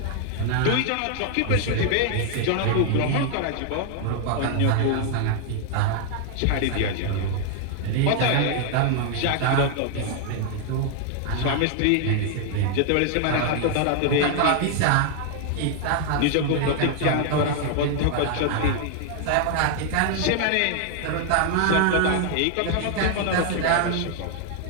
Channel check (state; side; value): different; both; correlation 0.00